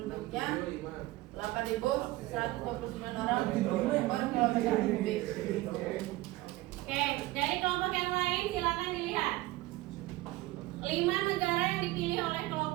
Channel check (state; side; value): quieter; left; 18.5 dB